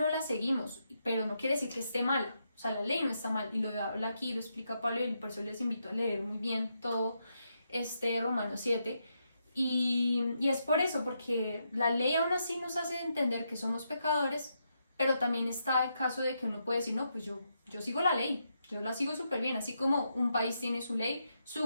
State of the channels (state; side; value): inverted; both; correlation -0.82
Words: la seguimos, pero no quiere decir que esté mala, o sea, la ley no está mal, y lo habla aquí, lo explica Pablo, y por eso les invito a leer muy bien todo Romanos 7, y es por eso, porque la ley aún así nos hace entender que somos pecadores, pero también está el caso de que uno puede decir, no, pues yo sigo la ley, yo la sigo súper bien, así como un país tiene su ley,